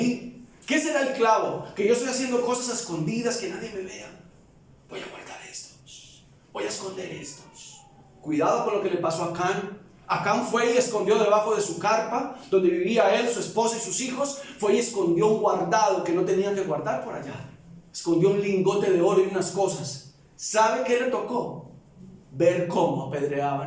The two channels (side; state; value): both; identical; correlation 1.00